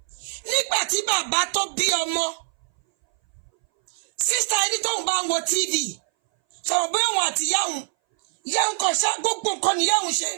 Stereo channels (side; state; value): left; silent; 61 dB below the other